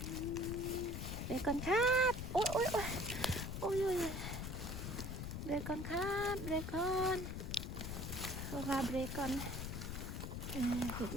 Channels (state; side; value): noise; left; rumble, 4 dB below the sound